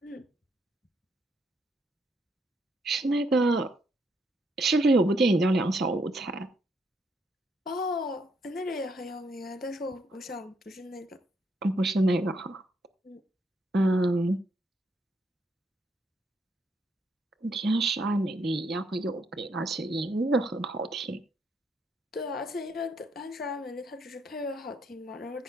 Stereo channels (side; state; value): both; normal; correlation 0.74